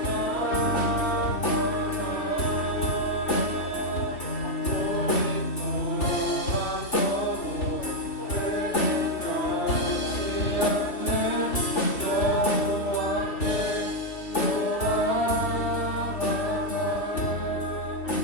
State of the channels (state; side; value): late; right; 3.4 ms